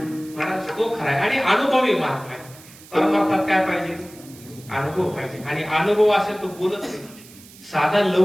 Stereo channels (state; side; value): noise; right; hiss, 21 dB below the sound